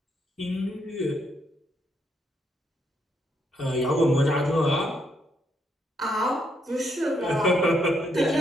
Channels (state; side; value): normal; both; correlation 0.76